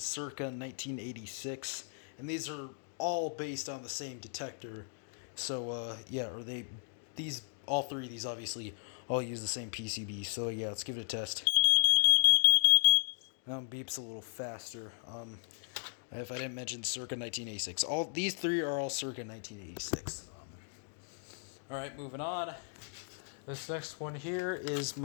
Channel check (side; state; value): right; silent; digital silence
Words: 1986. And these are all based on the same detector. So yeah, all three of these obviously all use the same PCB. So yeah, let's give it a test. Now beeps a little faster. If I didn't mention circa 1986. These three are all circa 1986. Alright, moving on. This next one here is